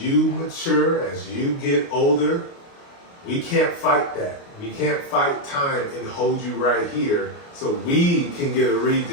mature, as you get older, we can't fight that. We can't fight time and hold you right here so we can get a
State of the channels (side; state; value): right; late; 29 ms